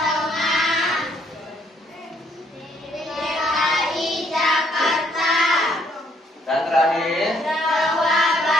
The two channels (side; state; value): both; normal; correlation 0.68